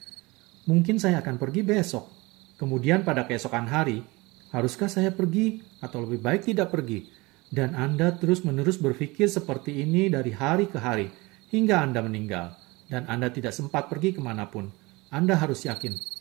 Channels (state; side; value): quieter; left; 23.5 dB